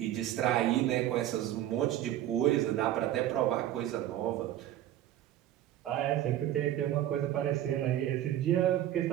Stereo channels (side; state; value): left; quieter; 12.7 dB